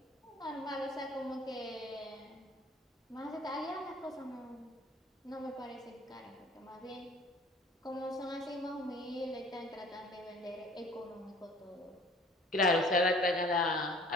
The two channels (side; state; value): both; normal; correlation 0.51